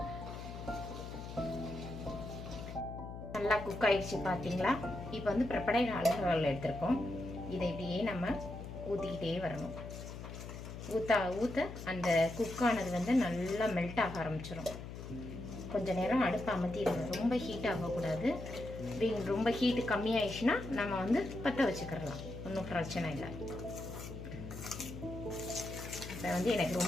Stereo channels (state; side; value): noise; left; hum, 10 dB below the sound